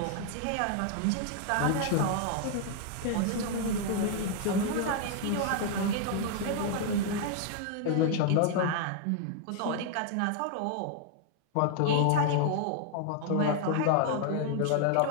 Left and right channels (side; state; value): both; different; correlation 0.00